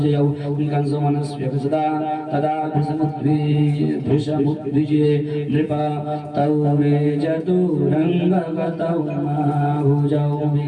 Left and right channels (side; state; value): both; identical; correlation 1.00